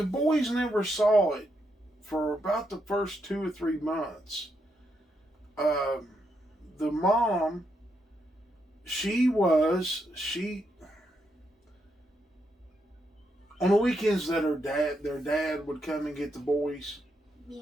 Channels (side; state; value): both; normal; correlation 0.80